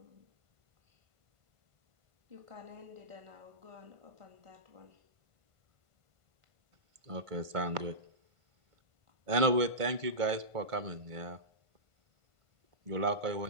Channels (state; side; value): late; left; 1.5 ms